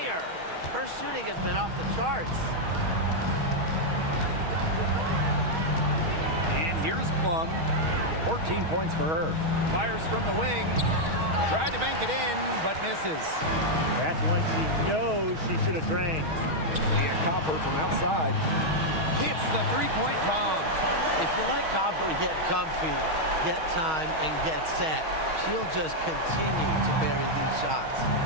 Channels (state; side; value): late; left; 6.3 ms